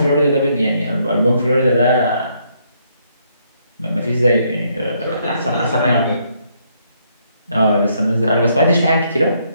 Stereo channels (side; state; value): both; inverted; correlation -0.72